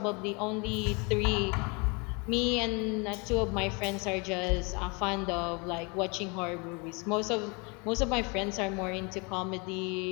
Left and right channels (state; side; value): quieter; right; 30.7 dB